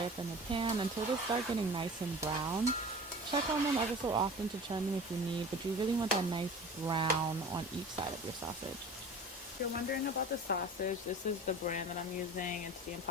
up in the pan until they start getting nice and brown. Check on them ever so often to turn them if you need, but you really want that nice brown on each side of your sausage. If you're wondering about the sausage, this is the brand that I'm using. It's the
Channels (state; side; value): normal; both; correlation 0.38